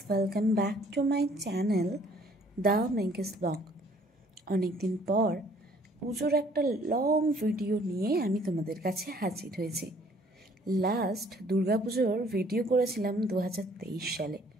welcome back to my channel The Menkes Blog। অনেকদিন পর পুজোর একটা লং ভিডিও নিয়ে আমি তোমাদের কাছে হাজির হয়েছি। লাস্ট দুর্গাপুজোর ভিডিও করেছিলাম 2023 সালে।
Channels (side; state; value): both; normal; correlation 0.59